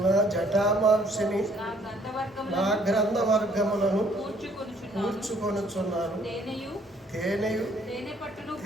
జటామాంసిని, నా గ్రంథవర్గములను కూర్చుకొనుచున్నాను. తేనెయు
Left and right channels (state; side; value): normal; both; correlation 0.62